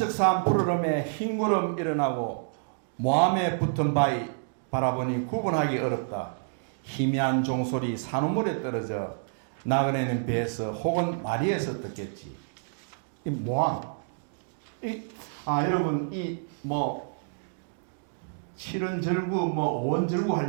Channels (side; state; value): left; silent; digital silence